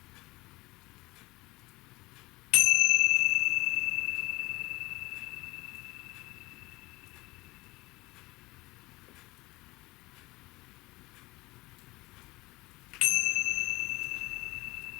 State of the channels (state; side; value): quieter; right; 21.3 dB